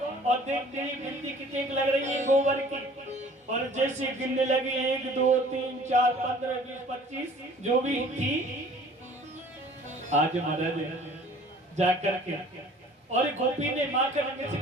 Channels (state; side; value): normal; both; correlation 0.50